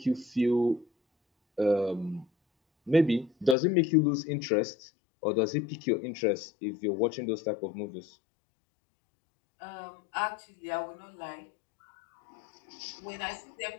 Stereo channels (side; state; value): right; drops out; at 3.6 s